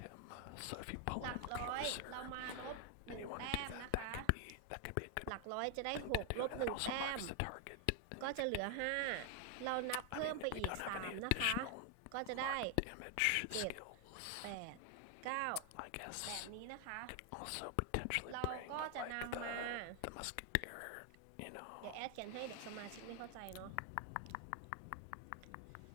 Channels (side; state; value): both; different; correlation 0.00